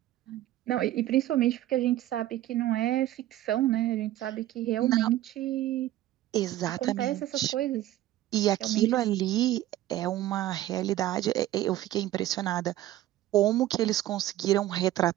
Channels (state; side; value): quieter; left; 14.3 dB